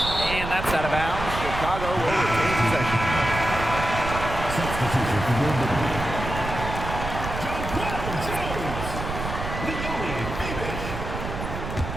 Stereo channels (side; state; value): right; noise; rumble, 6 dB below the sound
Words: that's out of bounds. Chicago will retain possession. Substitution for wnBA.